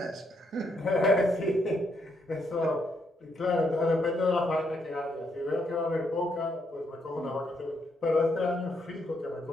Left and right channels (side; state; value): both; normal; correlation 0.76